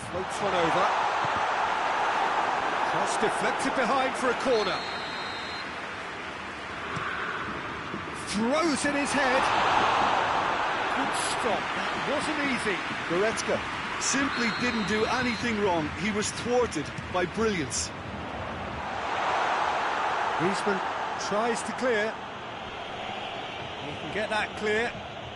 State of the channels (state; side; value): identical; both; correlation 1.00